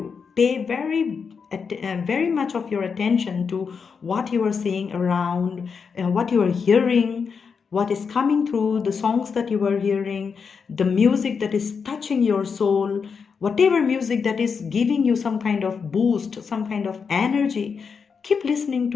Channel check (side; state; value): right; quieter; 5.8 dB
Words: Pay very much of your attention to what you are seeing around, what you are hearing, what is coming through, the songs that you are hearing, the music that is touching your soul, whatever music that is giving you some kind of boost, some kind of energy. Keep listening